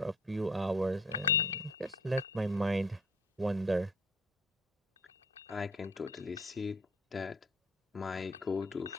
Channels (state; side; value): normal; both; correlation 0.53